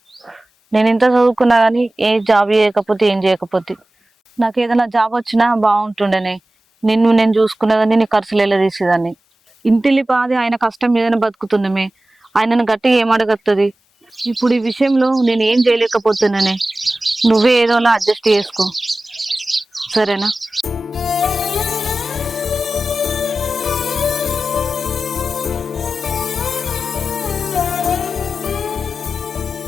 నేను ఎంత చదువుకున్నా కానీ ఏ జాబ్ చేయకపోతే ఏం చేయకపోతే నాకు ఏదైనా జాబ్ వచ్చినా బాగుంటుండేనే. నేను చూసుకునేదాన్ని, నీ ఖర్చులు ఎలా తీసేదాన్ని. ఇంటిల్లి పాది ఆయన కష్టం మీదనే బతుకుతున్నామే. ఆయనను గట్టిగా ఏం అడగత్తది? ఇప్పుడు ఈ విషయంలో నేను ఏం చేయలేకపోతున్నానే. నువ్వే ఏదోలా అడ్జస్ట్ చేసుకో, సరేనా?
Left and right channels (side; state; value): both; normal; correlation 0.95